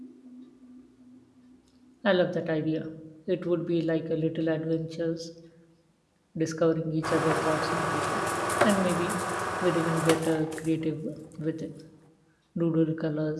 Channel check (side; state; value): both; identical; correlation 1.00